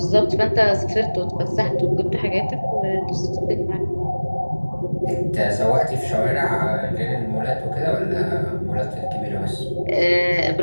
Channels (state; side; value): inverted; both; correlation -1.00